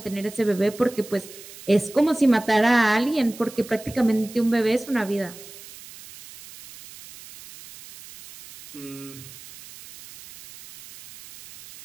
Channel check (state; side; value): noise; right; hiss, 17 dB below the sound